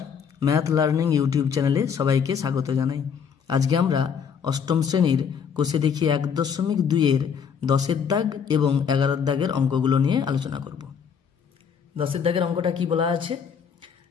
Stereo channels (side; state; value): right; quieter; 7.0 dB